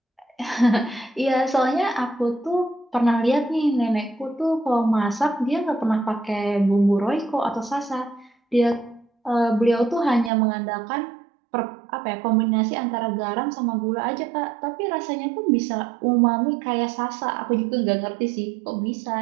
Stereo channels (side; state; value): left; drops out; at 10.3 s